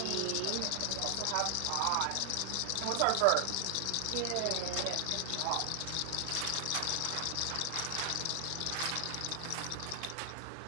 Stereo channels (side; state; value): both; different; correlation 0.00